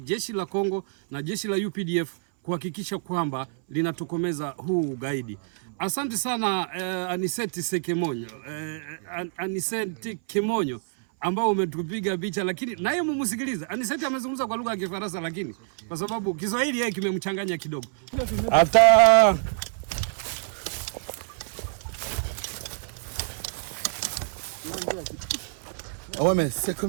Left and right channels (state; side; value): silent; left; 60 dB below the other